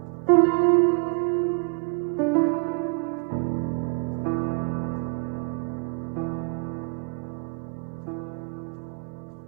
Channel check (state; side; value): quieter; left; 37.8 dB